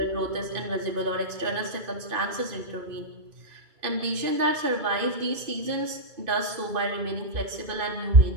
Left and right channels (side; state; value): left; late; 2.5 ms